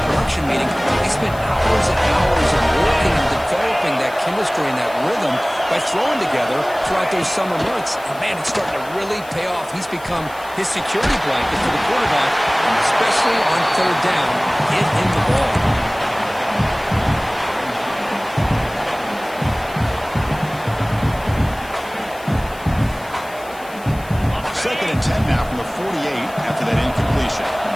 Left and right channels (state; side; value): noise; left; hiss, 21 dB below the sound